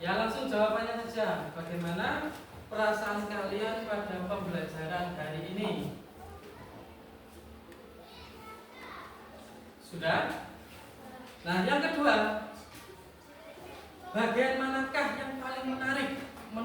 langsung jawabannya saja. Bagaimana perasaan kalian pada pembelajaran hari ini? Sudah? Nah, yang kedua, bagian manakah yang paling menarik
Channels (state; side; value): identical; both; correlation 1.00